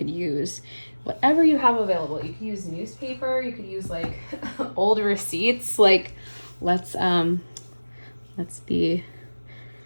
use whatever you have available. You could use newspaper, you could use like old receipts. Like let's be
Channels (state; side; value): inverted; both; correlation -1.00